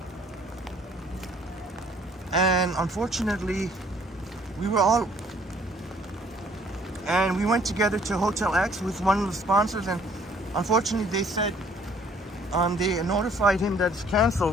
and unfortunately we went together to Hotel X with one of the sponsors, and unfortunately they said they notified him that it's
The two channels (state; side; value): normal; both; correlation 0.60